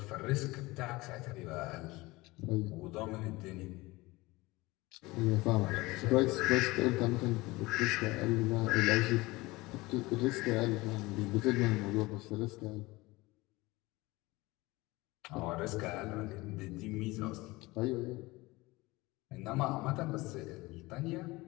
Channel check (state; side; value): quieter; right; 21.3 dB